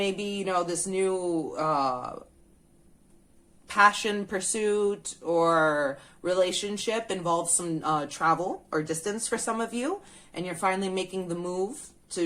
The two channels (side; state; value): both; identical; correlation 1.00